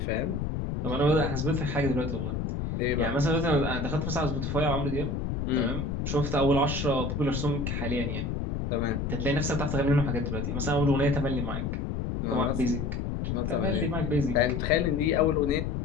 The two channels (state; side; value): noise; left; rumble, 2 dB below the sound